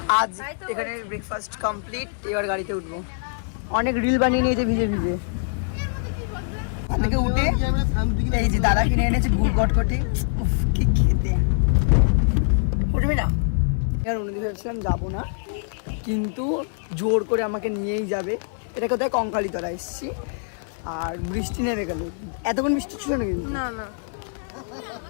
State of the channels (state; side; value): silent; right; 63 dB below the other